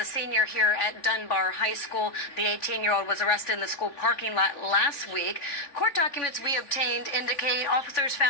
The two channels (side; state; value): right; late; 3.5 ms